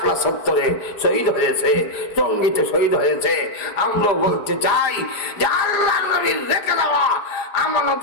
চত্বরে শহীদ হয়েছে, টঙ্গীতে শহীদ হয়েছে। আমরাও বলতে চাই যে আল্লাহ নবীর রেখে দেওয়া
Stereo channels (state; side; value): late; right; 4.9 ms